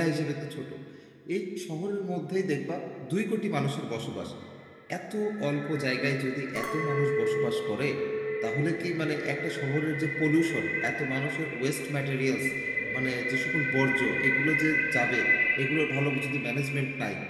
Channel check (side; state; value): both; identical; correlation 1.00